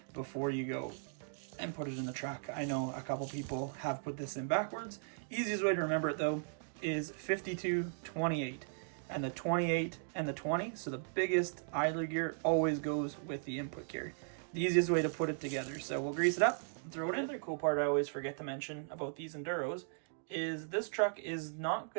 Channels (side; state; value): left; silent; digital silence